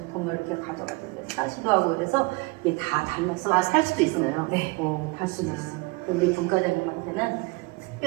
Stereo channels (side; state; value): left; quieter; 26.5 dB